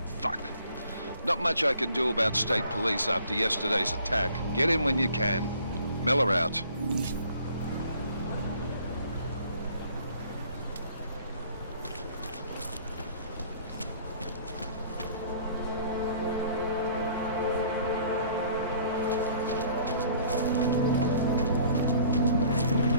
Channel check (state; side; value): inverted; both; correlation -0.56